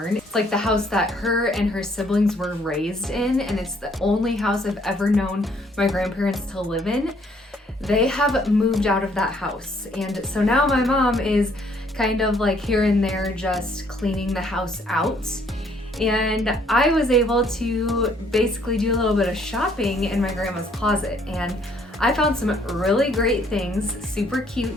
It's like the house that her and her siblings were raised in, and it's the only house I've ever known my grandparents to live in. They have moved out of that house, and so now my mom is kind of like here and there just cleaning the house out. And I was able to basically do a little bit of shopping in my grandma's closet, and I found some really great things, super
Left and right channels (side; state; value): both; normal; correlation 0.65